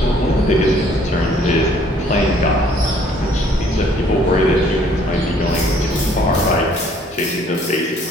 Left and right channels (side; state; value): both; normal; correlation 0.60